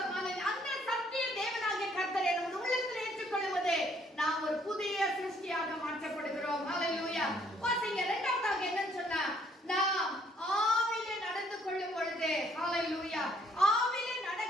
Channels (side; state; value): both; normal; correlation 0.65